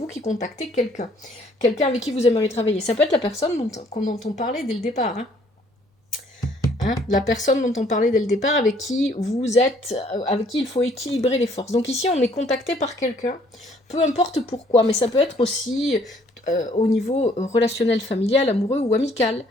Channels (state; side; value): normal; both; correlation 0.62